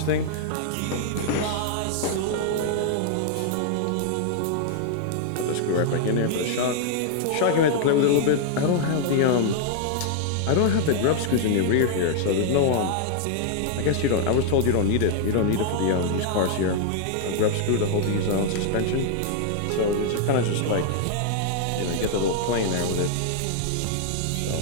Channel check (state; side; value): different; both; correlation 0.00